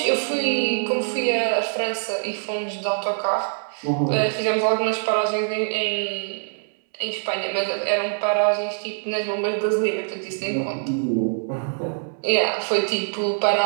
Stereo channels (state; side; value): silent; left; digital silence